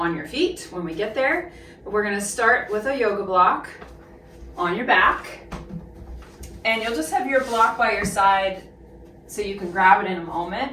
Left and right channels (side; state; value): both; identical; correlation 1.00